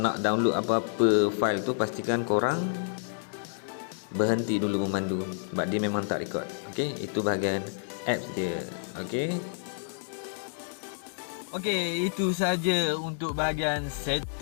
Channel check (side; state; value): right; silent; digital silence